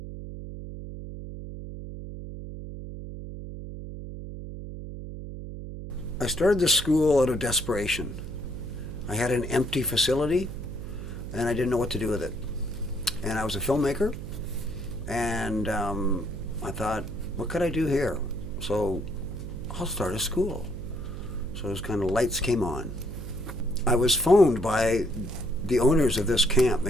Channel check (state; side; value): noise; right; hum, 9 dB below the sound